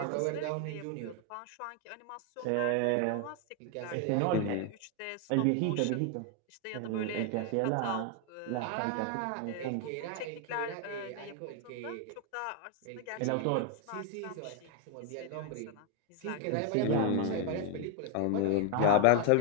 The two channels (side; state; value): both; different; correlation 0.00